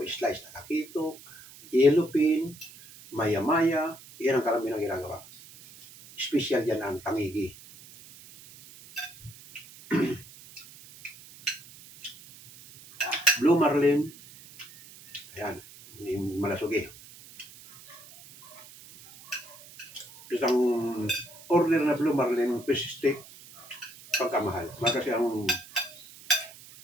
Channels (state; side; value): noise; right; hiss, 20 dB below the sound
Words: slice na kakitok, yellowfin, maya-maya. Yan ang karamihan ang ginagawa. Special yan ang tangigi. Blue marlin. Ayan. Yung malasugi. Isang order na blue marlin fish steak pagkamahal. Kasi ang